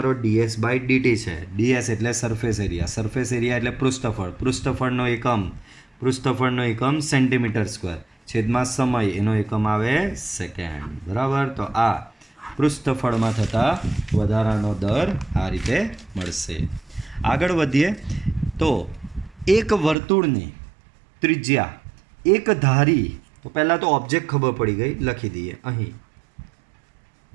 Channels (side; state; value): left; drops out; at 20.0 s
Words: ds બાય dt છે. ds એટલે સરફેસ એરિયા, સરફેસ એરિયા એટલે પૃષ્ઠફળનો એકમ સેન્ટીમીટર સ્ક્વેર, છેદમાં સમય, એનો એકમ આવે સેકન્ડ. બરાબર, તો આ પૃષ્ઠફળમાં થતા વધારાનો દર આ રીતે મળશે. આગળ વધીએ તો એક વર્તુળની ત્રિજ્યા એક ધારી, તો પહેલાં તો ઓબ્જેક્ટ ખબર પડી ગઈ, લખી દઈએ અહીં